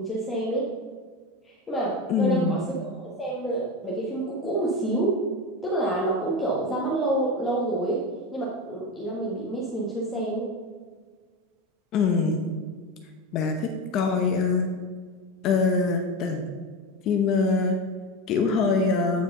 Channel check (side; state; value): both; normal; correlation 0.21